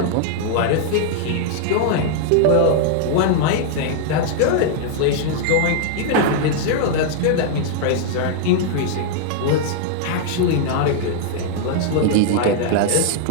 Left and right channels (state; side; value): different; both; correlation -0.01